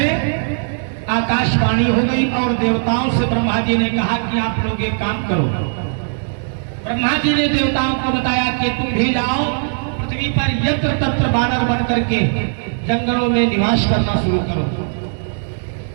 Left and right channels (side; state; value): left; silent; digital silence